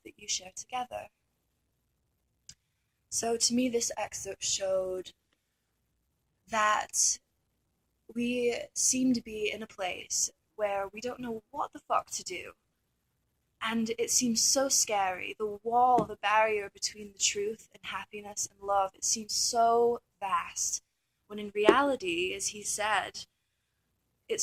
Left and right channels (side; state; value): both; identical; correlation 1.00